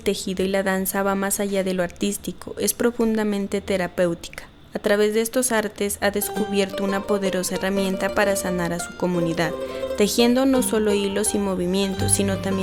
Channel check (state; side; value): identical; both; correlation 1.00